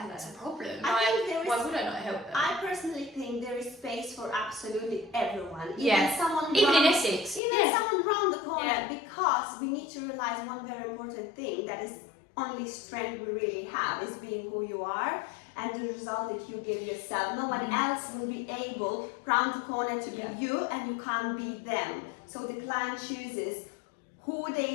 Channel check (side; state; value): right; drops out; at 7.4 s